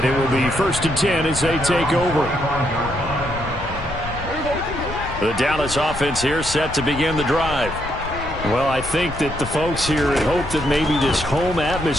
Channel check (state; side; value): noise; left; rumble, 11 dB below the sound